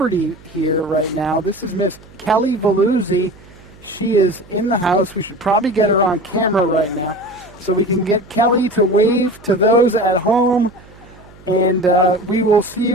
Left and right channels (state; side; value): noise; right; hum, 24 dB below the sound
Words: here right now. This is Miss Kelly Veluzzi. She is in the house. We should probably get her on camera right now so we can get Kelly to wave to those at home. And we will see